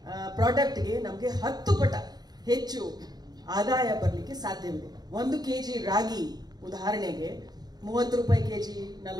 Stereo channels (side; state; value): left; late; 0.19 ms